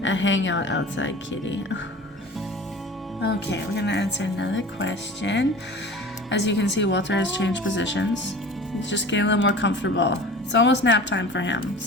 hangout outside kitty. Okay, we're gonna answer another question. As you can see, Walter has changed positions. He's just getting a little more comfortable. It's almost nap time for him,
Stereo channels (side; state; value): both; normal; correlation 0.39